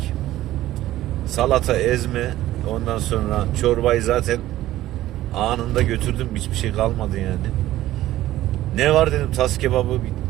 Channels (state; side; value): quieter; left; 14.8 dB